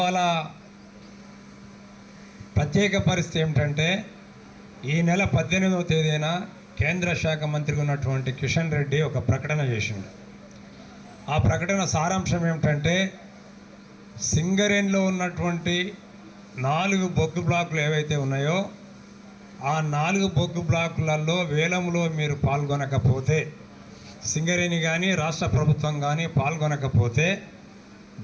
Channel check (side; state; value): both; identical; correlation 1.00